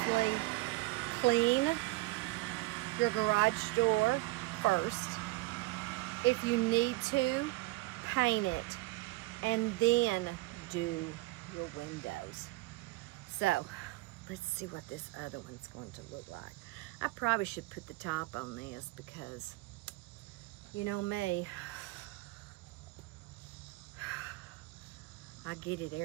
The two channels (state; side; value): quieter; left; 20.6 dB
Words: clean your garage door first. If you need to, paint it and then do your windows. So let's see what this other one's going to look like. I probably should put the top on this because you know me, I get it